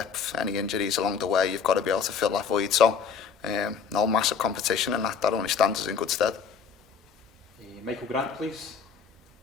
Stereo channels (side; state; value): right; quieter; 6.4 dB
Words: Any injuries along the way, you've got to be able to fill that void. So, no massive competition, and that only stands us in good stead. Michael Grant, please.